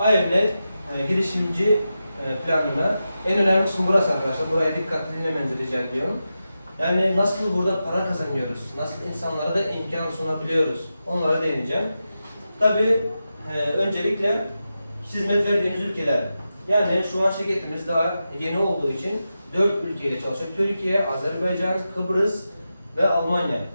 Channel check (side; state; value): both; inverted; correlation -0.90